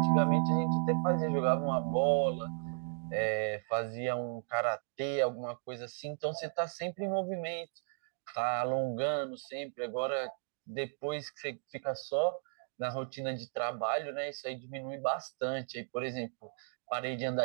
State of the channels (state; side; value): silent; left; digital silence